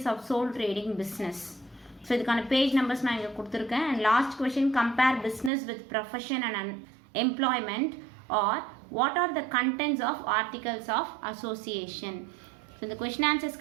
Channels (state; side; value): drops out; left; at 5.5 s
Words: of sole trading business? So இதுக்கான page numbers நான் இங்கே கொடுத்துருக்கேன். And last question, compare business with profession and employment. Or what are the contents of articles of association? So இந்த question